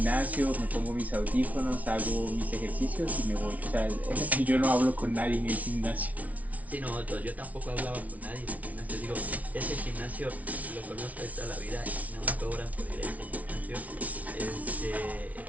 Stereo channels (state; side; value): late; left; 0.070 ms